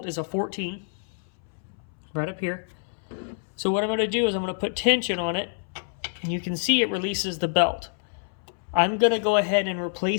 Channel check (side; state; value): right; silent; 60 dB below the other